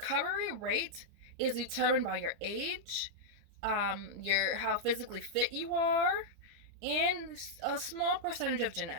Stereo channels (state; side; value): late; left; 30 ms